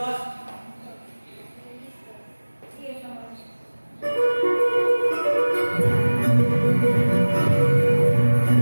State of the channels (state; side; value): inverted; both; correlation -1.00